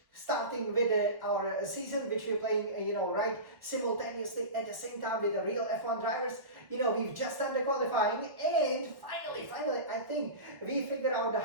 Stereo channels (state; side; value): late; left; 1.6 ms